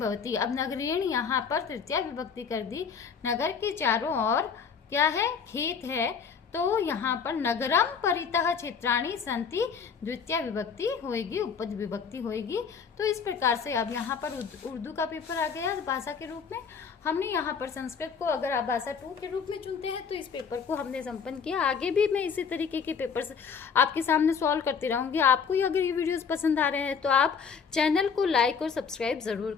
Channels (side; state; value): right; quieter; 6.3 dB